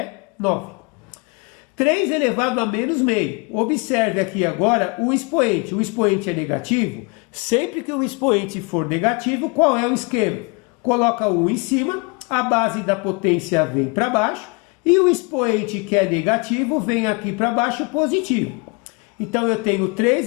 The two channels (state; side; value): quieter; right; 30.3 dB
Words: 9. 3 elevado a menos meio. Observe aqui agora o expoente. O expoente é negativo. Sempre que o expoente for negativo, qual é o esquema? Coloca o 1 em cima, a base da potência vem para baixo, e o expoente que é negativo vem aqui para baixo positivo. Então eu tenho